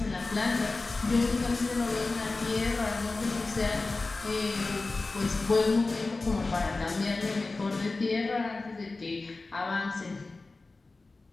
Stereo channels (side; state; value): right; quieter; 3.5 dB